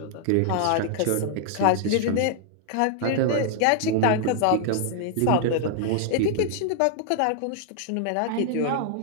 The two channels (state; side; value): different; both; correlation 0.00